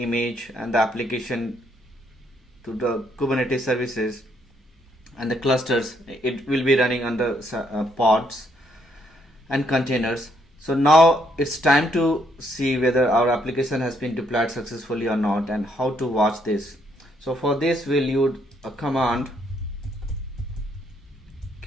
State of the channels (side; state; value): both; normal; correlation 0.72